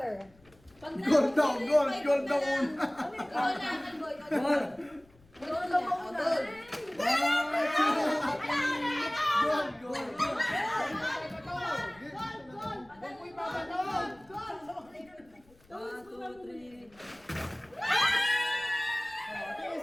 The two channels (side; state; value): left; noise; rumble, 29 dB below the sound